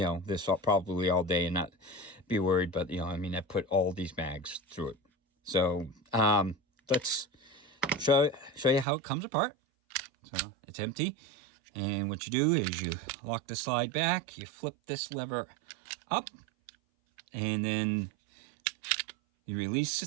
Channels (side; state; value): left; drops out; at 8.8 s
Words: probably all day and not be worried. But, I put all these mags through it. So let's show you how it comes apart. So it's empty, and what you do is you lock the slide back, you flip this lever up, and then you release